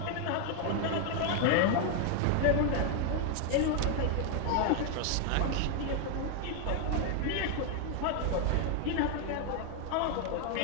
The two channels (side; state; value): both; different; correlation 0.00